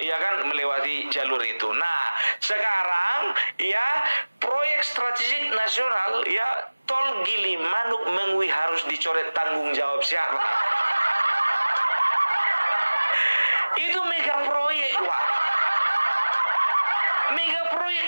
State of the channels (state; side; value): inverted; both; correlation -1.00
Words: ya kan, melewati jalur itu. Nah, sekarang ya proyek strategik nasional ya tol Gilimanuk Mengwi harus dicoret. Tanggung jawab siapa? Itu mega proyek, wah. Mega